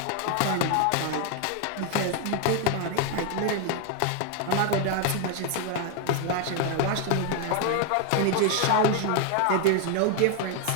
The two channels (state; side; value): different; both; correlation 0.01